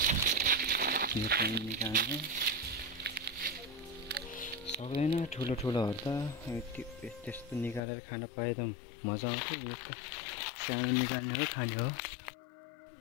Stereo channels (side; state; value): right; drops out; at 7.8 s